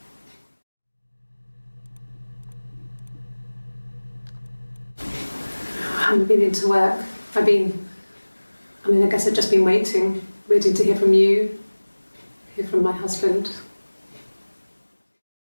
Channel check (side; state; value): both; inverted; correlation -1.00